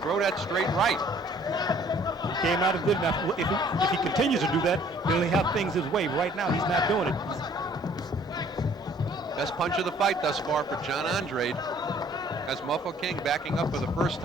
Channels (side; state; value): both; normal; correlation 0.57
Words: that straight right. He came out and did it. Now, if he continues to do that, then he'll have things his way. Right now, he's not doing it. Best punch of the fight thus far for John Andrade. Has Mofokeng backing up for the first